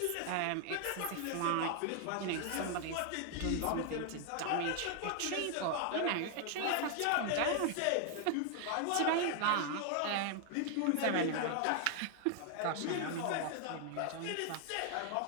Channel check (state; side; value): different; both; correlation 0.00